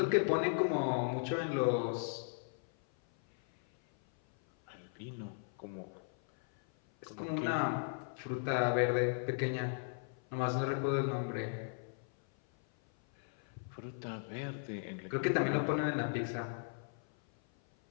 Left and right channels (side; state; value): right; silent; 53 dB below the other